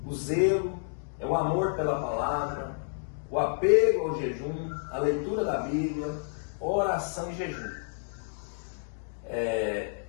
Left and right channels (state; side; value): silent; right; digital silence